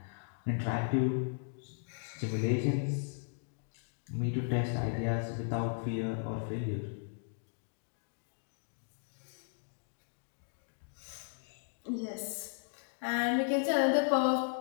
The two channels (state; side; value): silent; right; digital silence